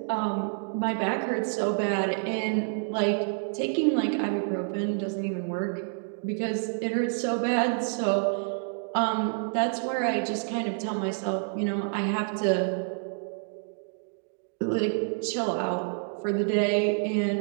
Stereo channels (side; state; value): left; silent; 59 dB below the other